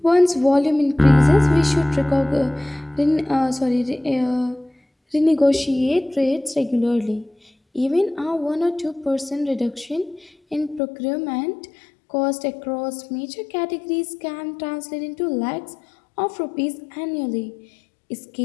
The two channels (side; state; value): right; drops out; at 10.8 s